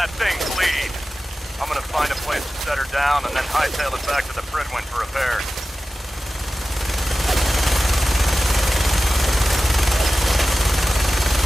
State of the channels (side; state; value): both; normal; correlation 0.95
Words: thing bleed. I'm gonna find a place to set her down and then hightail it back to the Prydwyn for repairs.